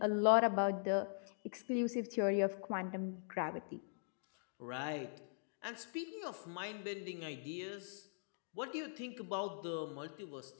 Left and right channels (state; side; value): silent; right; digital silence